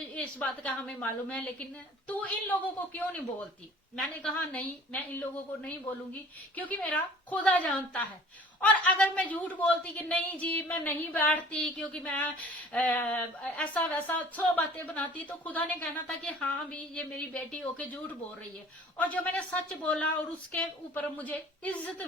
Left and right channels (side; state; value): both; normal; correlation 0.48